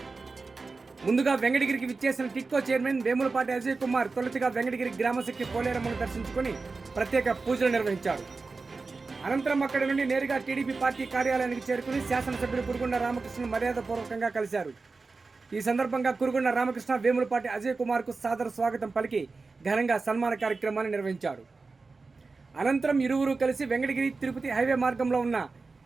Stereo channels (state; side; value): quieter; left; 4.0 dB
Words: ముందుగా వెంకటగిరికి విచ్చేసిన టిట్కో చైర్మన్ వేములపాటి అజయ్ కుమార్ తొలుతగా వెంకటగిరి గ్రామశక్తి పోలేరమ్మను దర్శించుకుని ప్రత్యేక పూజలు నిర్వహించారు. అనంతరం అక్కడి నుండి నేరుగా టీడీపీ పార్టీ కార్యాలయానికి చేరుకుని శాసనసభ్యులు కురుగుండ్ల రామకృష్ణను మర్యాదపూర్వకంగా కలిశారు. ఈ సందర్భంగా కురుగుండ్ల రామకృష్ణ వేములపాటి అజయ్ కుమార్కు సాదర స్వాగతం పలికి ఘనంగా సన్మాన కార్యక్రమాన్ని నిర్వహించారు. అనంతరం ఇరువురు కలిసి వెంకటగిరి తిరుపతి హైవే మార్గంలో ఉన్న